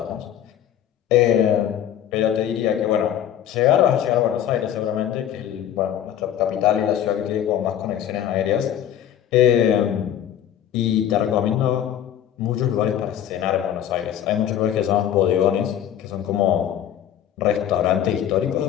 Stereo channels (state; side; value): quieter; right; 10.4 dB